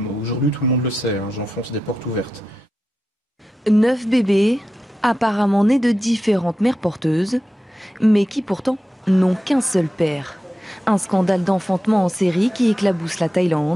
aujourd'hui tout le monde le sait, j'enfonce des portes ouvertes. 9 bébés, apparemment nés de différentes mères porteuses, mais qui pourtant n'ont qu'un seul père. Un scandale d'enfantement en série qui éclabousse la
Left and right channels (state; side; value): normal; both; correlation 0.90